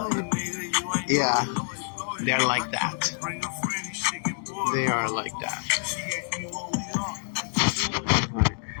you. Yeah, they're like that. They are like that.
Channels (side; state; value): right; silent; 60 dB below the other